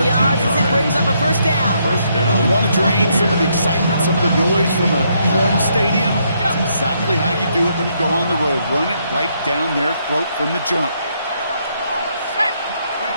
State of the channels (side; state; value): both; inverted; correlation -0.74